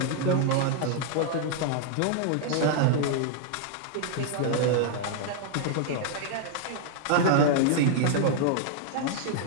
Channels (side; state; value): both; different; correlation -0.01